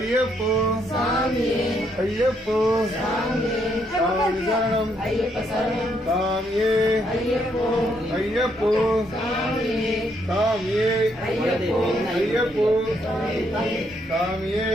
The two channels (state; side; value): normal; both; correlation 0.74